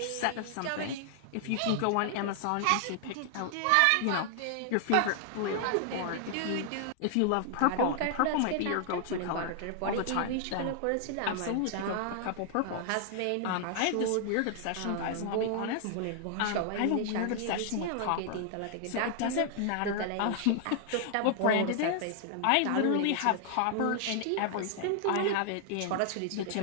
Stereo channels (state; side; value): different; both; correlation 0.00